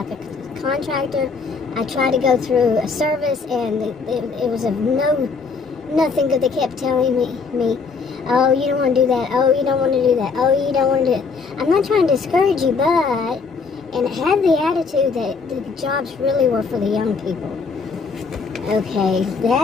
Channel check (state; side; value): quieter; right; 4.9 dB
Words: a contractor. I tried to go through a service, and it was of nothing good. They kept telling me, oh, you don't want to do that. Oh, you don't want to do that. Oh, you don't want to do it. I'm not trying to discourage you, and it had the attitude that the jobs really were for the young people. Okay,